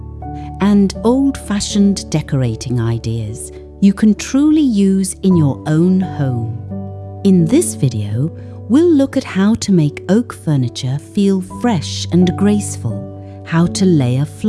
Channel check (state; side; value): identical; both; correlation 1.00